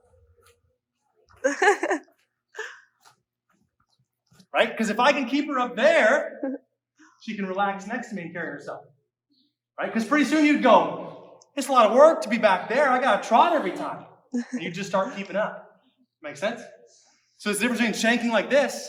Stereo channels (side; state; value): both; identical; correlation 1.00